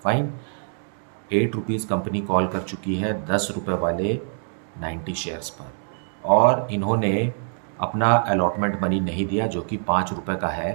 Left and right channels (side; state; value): left; silent; digital silence